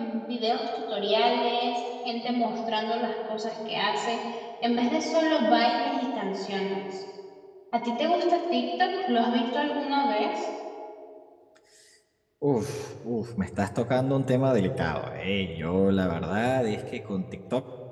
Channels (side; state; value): both; identical; correlation 1.00